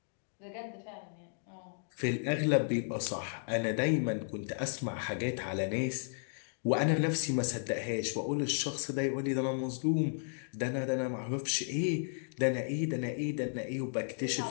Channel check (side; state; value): right; silent; digital silence